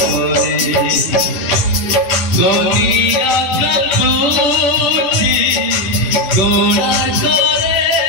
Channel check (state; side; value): late; right; 10 ms